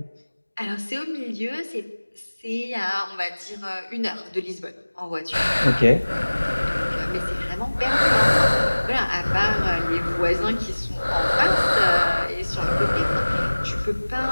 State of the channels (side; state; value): both; inverted; correlation -1.00